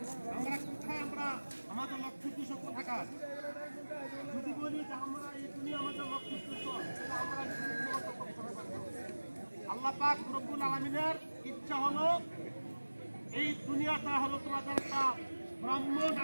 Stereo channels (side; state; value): both; inverted; correlation -1.00